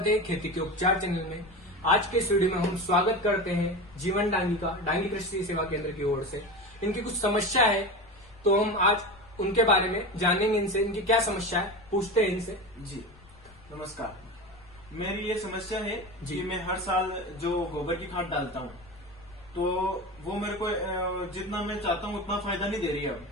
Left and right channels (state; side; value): noise; left; rumble, 25 dB below the sound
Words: है खेती के उपचार चैनल में। आज के इस वीडियो में हम स्वागत करते हैं जीवन डांगी का, डांगी कृषि सेवा केंद्र की ओर से। इनकी कुछ समस्या है तो हम आज उनके बारे में जानेंगे, इनसे इनकी क्या समस्या है पूछते हैं इनसे। जी नमस्कार। मेरी ये समस्या है जी। कि मैं हर साल जो गोबर की खाद डालता हूँ तो वो मेरे को जितना मैं चाहता हूँ उतना फायदा नहीं दे रही है अब।